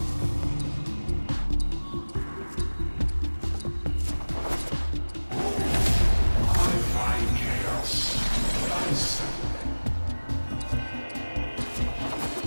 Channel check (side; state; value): both; inverted; correlation -1.00